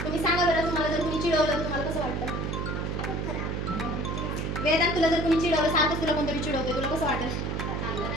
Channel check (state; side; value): noise; right; hum, 2 dB below the sound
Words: तुम्ही सांगा बरं, तुम्हाला जर कुणी चिडवलं तुम्हाला कसं वाटतं? वेदांत, तुला जर कुणी चिडवलं, सारखं तुला कोणतरी चिडवतोय, तुला कसं वाटेल?